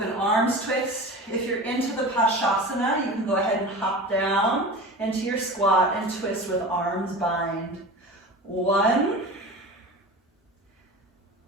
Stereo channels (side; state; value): both; normal; correlation 0.33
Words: arms twist. If you're into the Pashasana, you can go ahead and hop down into your squat and twist with arms bind. 1,